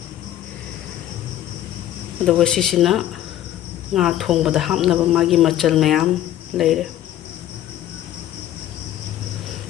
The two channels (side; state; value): right; quieter; 12.5 dB